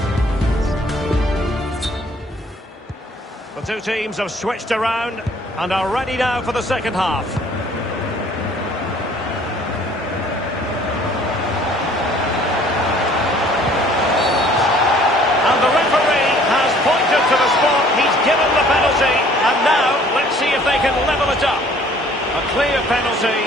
two teams have switched around and are ready now for the second half. And the referee has pointed to the spot. He's given the penalty. And now, let's see if they can level it up. A clear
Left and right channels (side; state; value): both; normal; correlation 0.56